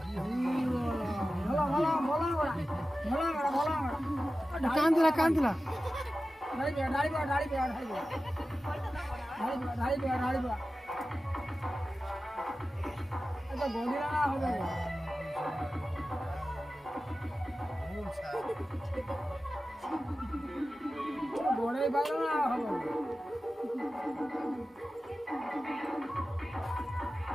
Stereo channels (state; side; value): normal; both; correlation 0.94